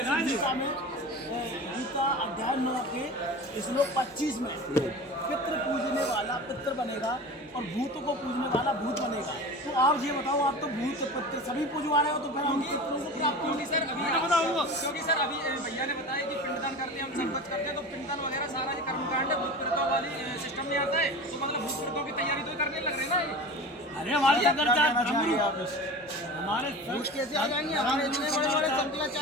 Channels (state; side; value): normal; both; correlation 0.33